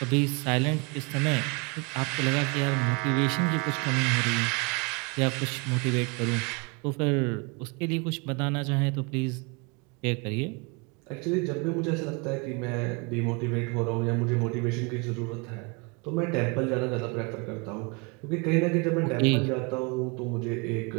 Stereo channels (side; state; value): left; quieter; 30.2 dB